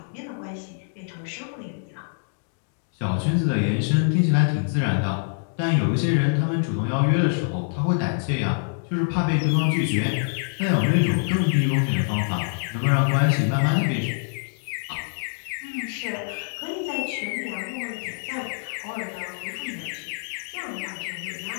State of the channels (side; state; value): right; silent; digital silence